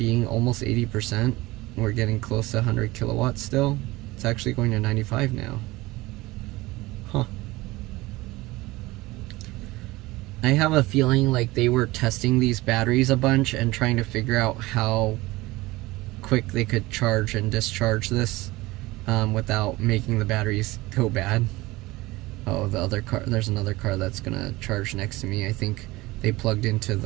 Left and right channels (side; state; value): left; quieter; 20.2 dB